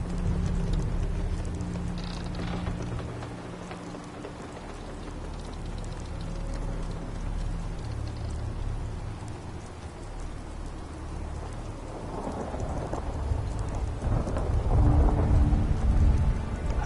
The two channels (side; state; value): both; identical; correlation 1.00